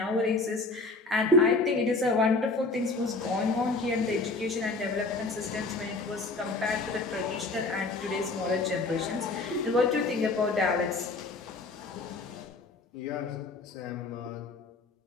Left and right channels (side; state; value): right; quieter; 3.5 dB